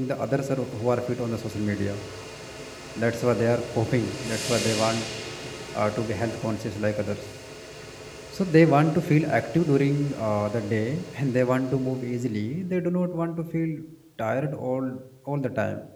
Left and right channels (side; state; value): both; identical; correlation 1.00